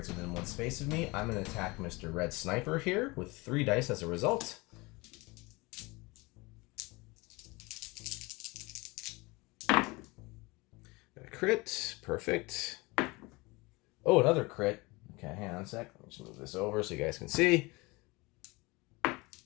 within 1 space of me. I'm going to attack Mr. Red Sniper here with 3 dice as a result. Got a crit. Perfect. Oh, another crit. Okay, hang on a sec. Let me just move this over so you guys can see.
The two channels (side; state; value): right; quieter; 24.3 dB